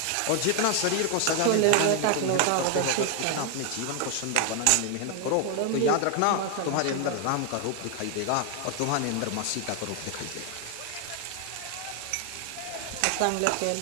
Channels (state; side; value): different; both; correlation 0.01